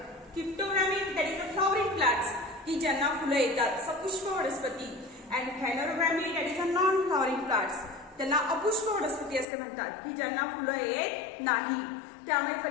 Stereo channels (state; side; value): drops out; right; at 9.5 s